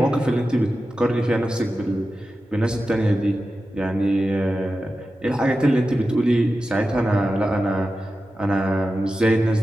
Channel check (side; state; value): both; normal; correlation 0.92